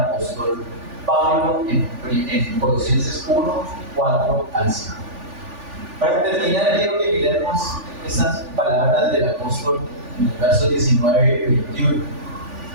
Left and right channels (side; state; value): left; late; 3.4 ms